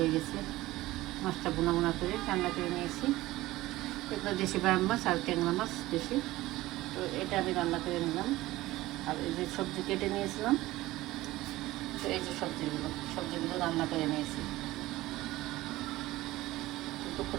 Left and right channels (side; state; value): left; quieter; 17.6 dB